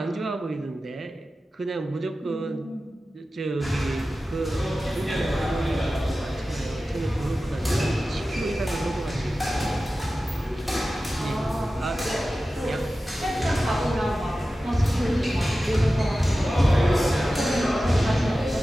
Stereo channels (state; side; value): normal; both; correlation 0.94